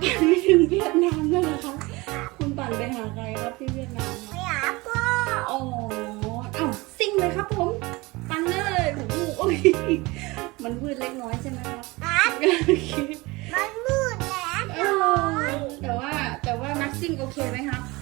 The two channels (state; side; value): quieter; left; 23.0 dB